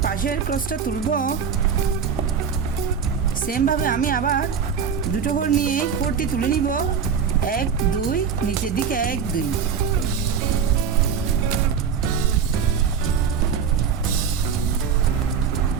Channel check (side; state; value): left; quieter; 6.8 dB